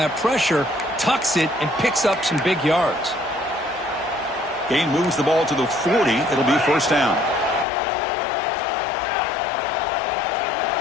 pressure, tucks it, and picks up some big yards. Gain moves the ball to the 40. It'll be 1st down.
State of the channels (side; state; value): right; drops out; at 7.7 s